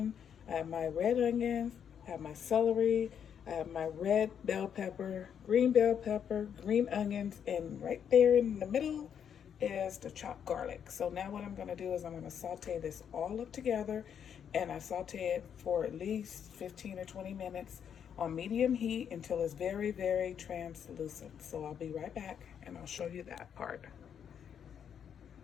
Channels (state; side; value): quieter; right; 8.2 dB